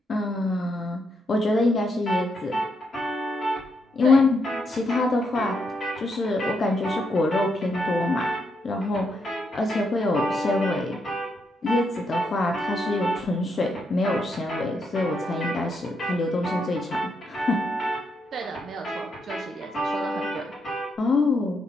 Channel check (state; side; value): normal; both; correlation 0.79